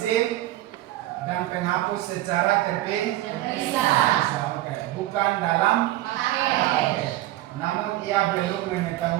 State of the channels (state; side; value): quieter; left; 15.6 dB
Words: dan penghapus secara terpisah. Oke, bukan dalam paket. Namun ia belum